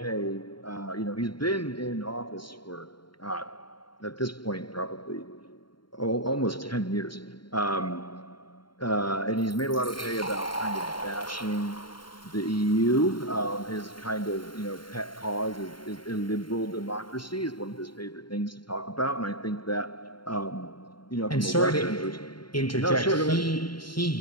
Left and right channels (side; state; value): right; late; 0.72 ms